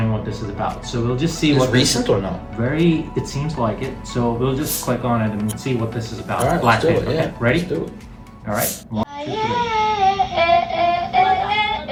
what this is about. So we'll just see what recent or no? Very, it seems like it. So we'll just click on it and see what this is about. All right, Blackpink. let's do it. Okay, Yeah, ready? Let's do it. All right. 1, 2, 3.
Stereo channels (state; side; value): identical; both; correlation 1.00